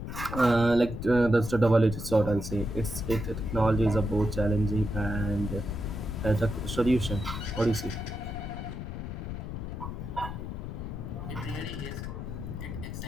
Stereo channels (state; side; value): noise; left; rumble, 7 dB below the sound